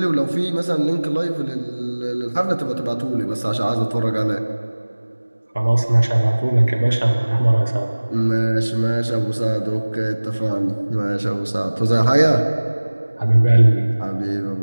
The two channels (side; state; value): both; inverted; correlation -1.00